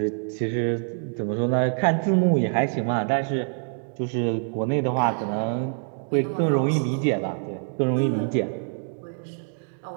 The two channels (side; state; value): left; silent; 62 dB below the other